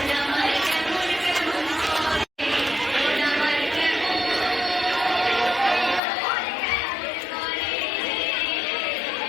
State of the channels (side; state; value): right; drops out; at 6.0 s